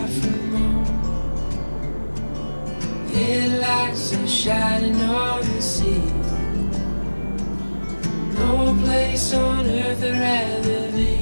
from home. Headlights are shining on the sea. No place on earth I'd rather be.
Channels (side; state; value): both; inverted; correlation -1.00